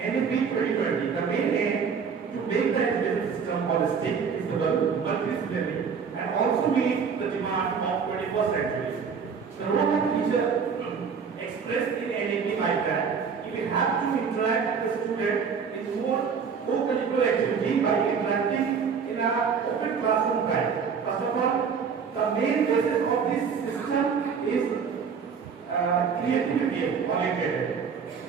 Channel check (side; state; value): left; quieter; 6.2 dB